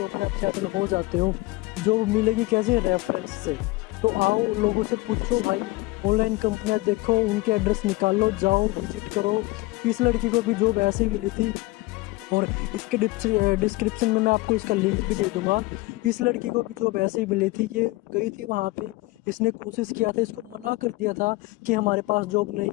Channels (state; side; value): quieter; right; 21.5 dB